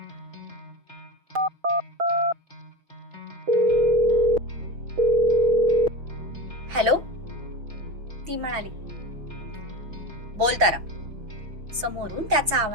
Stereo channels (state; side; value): late; left; 5.9 ms